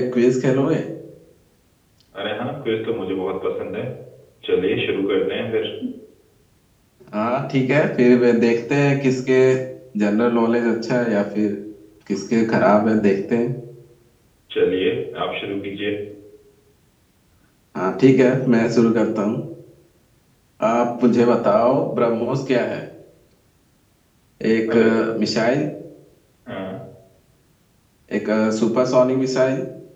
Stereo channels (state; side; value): identical; both; correlation 1.00